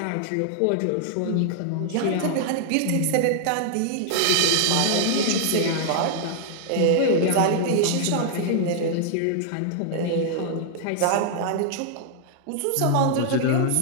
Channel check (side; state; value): both; different; correlation -0.01